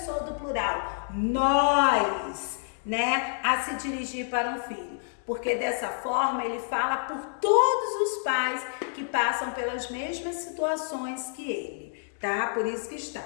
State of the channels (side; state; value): right; silent; digital silence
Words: do plural, nós, né, a se dirigir para um filho. Porque dessa forma ele fala por todos os pais que passam pelas mesmas situações que ele, tá? Por isso que está.